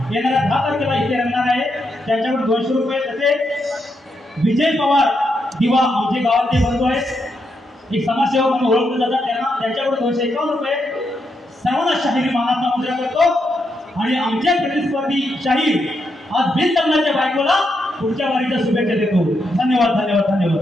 येणाऱ्या 10 तारखेला इथे रंगणार आहे। त्यांच्याकडे 200 रुपये, तसेच विजय पवार दिवा आमचे गावातले बंधू आहेत, एक समाजसेवक म्हणून ओळखले जातात, त्यांच्याकडे 251 रुपये सर्वांना शाहिरी मानाचा मुद्रा करतो। आणि आमच्या प्रतिस्पर्धी शाहीर आज बिनलग्नाच्या बायकोला पुढच्या वारीच्या शुभेच्छा देतो। धन्यवाद धन्यवाद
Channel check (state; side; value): normal; both; correlation 0.81